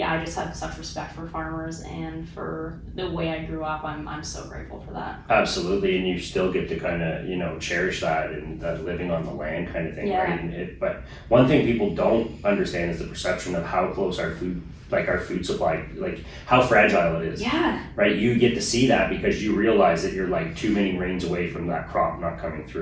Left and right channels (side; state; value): both; identical; correlation 1.00